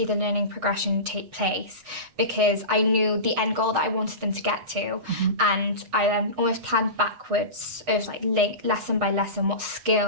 the learning progression take place because I knew the end goal that I wanted them to get to, and I almost planned backwards of like lesson by lesson, what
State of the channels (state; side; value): late; left; 8.0 ms